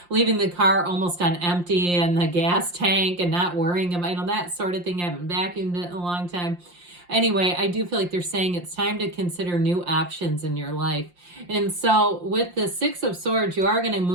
leaving the car almost on empty and the gas tank and not worrying about, that sort of thing. I haven't vacuumed it in a long time. Anyway, I do feel like they're saying it's time to consider new options in your life. And so with the Six of Swords, you are going to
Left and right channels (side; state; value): left; late; 5.7 ms